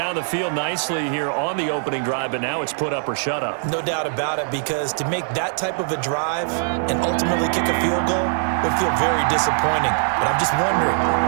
the field nicely here on the opening drive, but now it's put up or shut up. No doubt about it, because to make that type of a drive and ultimately kick a field goal would feel very disappointing. But I'm just wondering,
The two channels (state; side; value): silent; left; 62 dB below the other